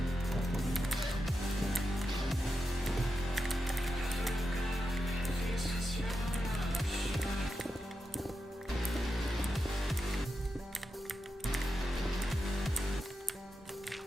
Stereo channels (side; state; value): both; normal; correlation 0.89